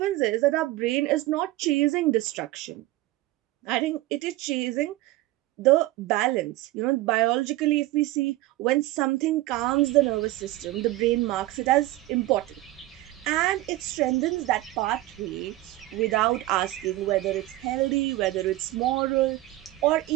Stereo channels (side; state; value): left; quieter; 17.2 dB